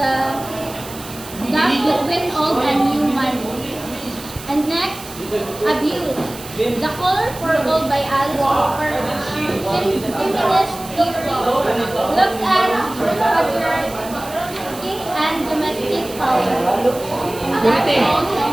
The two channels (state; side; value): noise; right; hiss, 15 dB below the sound